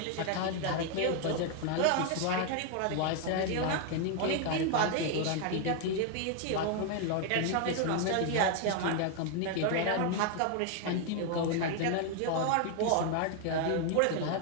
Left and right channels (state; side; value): different; both; correlation 0.01